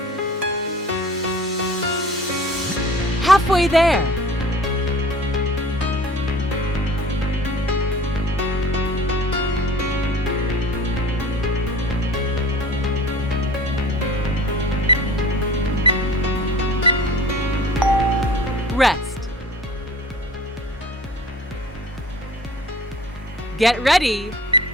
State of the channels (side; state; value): both; normal; correlation 0.44